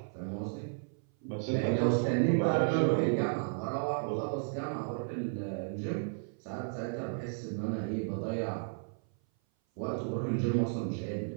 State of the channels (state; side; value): silent; left; 56 dB below the other